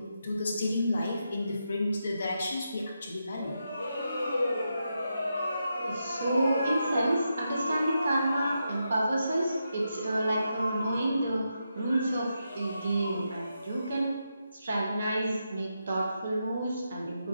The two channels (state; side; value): inverted; both; correlation -0.85